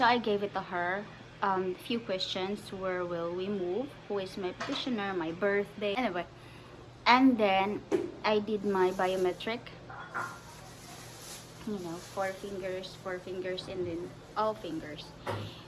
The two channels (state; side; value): identical; both; correlation 1.00